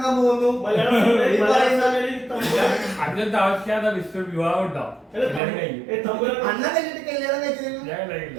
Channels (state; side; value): drops out; left; at 5.4 s